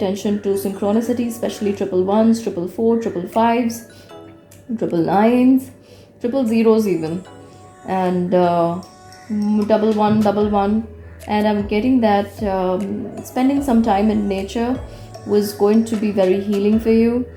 to synchronicity, especially triple ones, triple four, triple fives, triple nines, triple zeros even, and double one, double one. And I'm getting that spending some time in nature was going to be very healing for you.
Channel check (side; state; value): both; identical; correlation 1.00